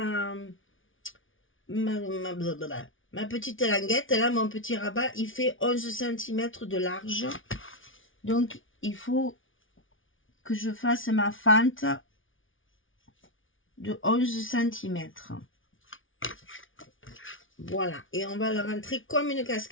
petite languette, là, mon petit rabat, il fait 11 cm de large. Donc, il faut que je fasse ma fente de 11 cm. Voilà, et on va le rentrer comme une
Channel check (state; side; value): late; right; 0.57 ms